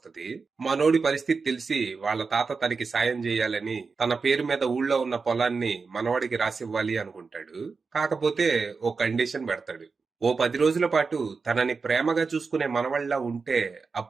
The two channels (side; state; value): left; quieter; 4.7 dB